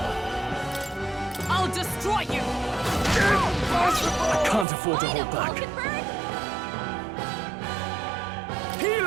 I'll destroy you. I can't afford to hold back. Falconbird?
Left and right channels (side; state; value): left; drops out; at 4.7 s